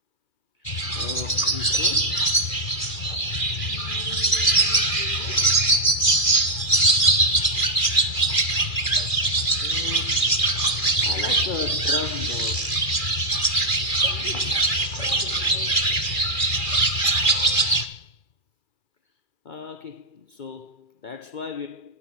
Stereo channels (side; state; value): right; late; 2.4 ms